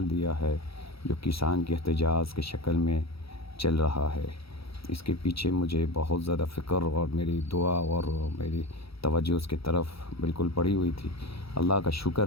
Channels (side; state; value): right; late; 0.76 ms